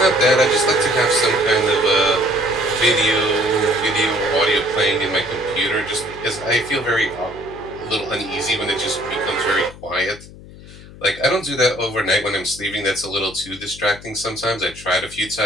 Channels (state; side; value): noise; left; hum, 18 dB below the sound